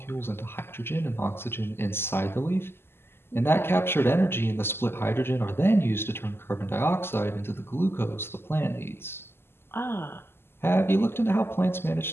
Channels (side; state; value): right; late; 0.12 ms